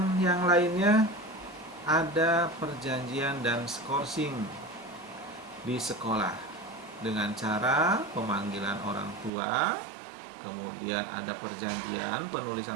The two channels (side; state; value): left; drops out; at 9.3 s